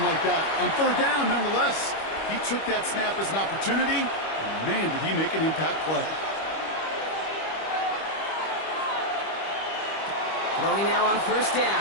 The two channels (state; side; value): late; right; 25 ms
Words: like that. On 3rd down, nonetheless, he took that snap as an opportunity, and man, did he make an impact play. Throwing now on first